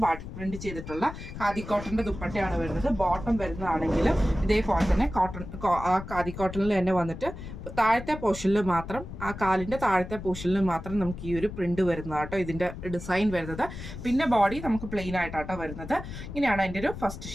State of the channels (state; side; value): noise; left; rumble, 10 dB below the sound